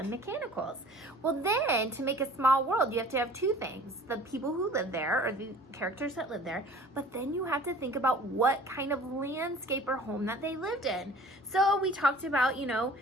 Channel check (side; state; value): both; normal; correlation 0.47